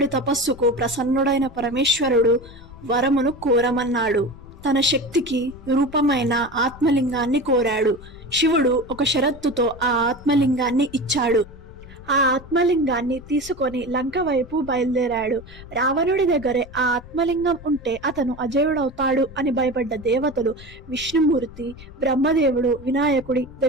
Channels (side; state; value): left; noise; rumble, 18 dB below the sound